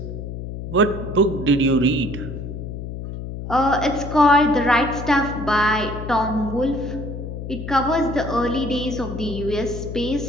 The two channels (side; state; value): left; noise; hum, 8 dB below the sound